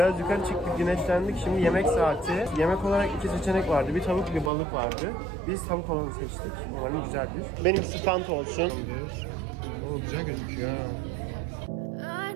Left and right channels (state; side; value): drops out; left; at 4.5 s